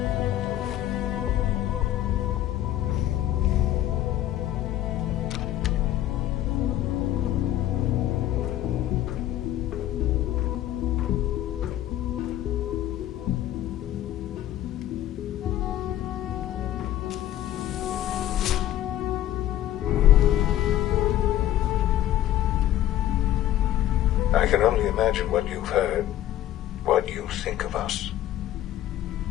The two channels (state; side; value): quieter; right; 13.0 dB